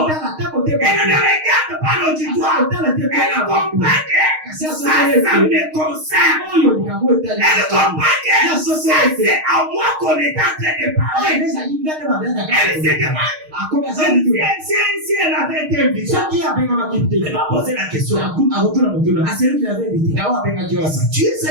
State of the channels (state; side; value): late; left; 6.5 ms